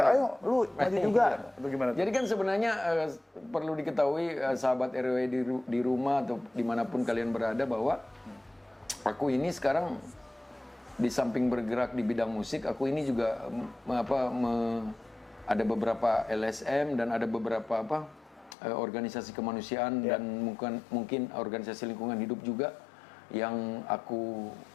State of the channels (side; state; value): right; drops out; at 18.6 s